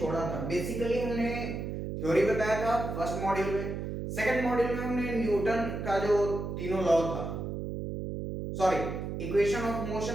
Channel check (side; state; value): right; noise; hum, 5 dB below the sound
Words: था, बेसिकली हमने थ्योरी बताया था फर्स्ट मॉड्यूल में। सेकंड मॉड्यूल में हमने न्यूटन का जो तीनों लॉ था, सॉरी, इक्वेशन ऑफ